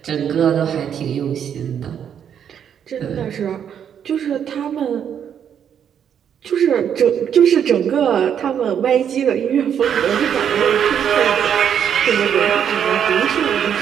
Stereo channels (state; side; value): quieter; left; 8.6 dB